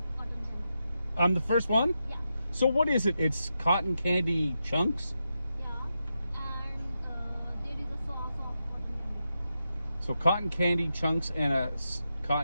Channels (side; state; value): both; inverted; correlation -0.87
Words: cotton candy. I'm the first one? Yeah. So what is it? It's cotton candy chunks? Yeah. And there is a sauce of cotton candy. So cotton candy chunks and a